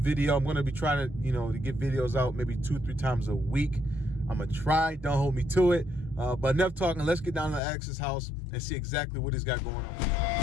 I'm gonna be trying to, to get videos out maybe 2-3 times a week. I'm gonna try. Don't hold me to it. But enough talking. Let's get down to Alex's house and see exactly what he's got going on.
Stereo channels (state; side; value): drops out; right; at 7.6 s